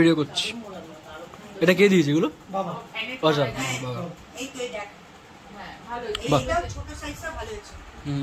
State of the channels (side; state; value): both; identical; correlation 1.00